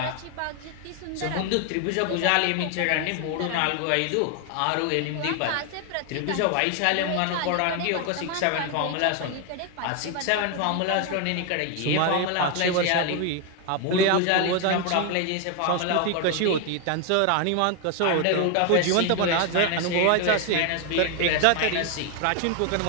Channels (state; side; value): different; both; correlation 0.01